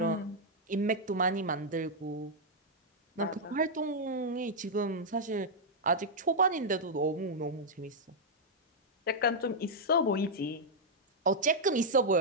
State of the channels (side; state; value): both; normal; correlation -0.05